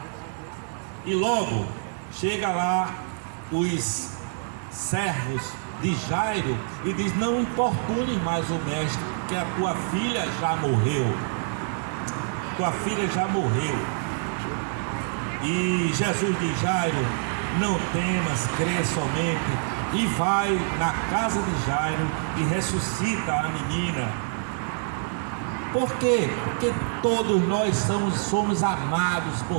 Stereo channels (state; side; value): silent; left; digital silence